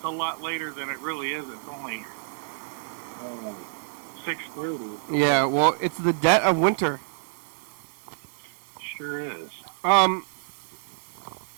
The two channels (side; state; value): left; silent; 59 dB below the other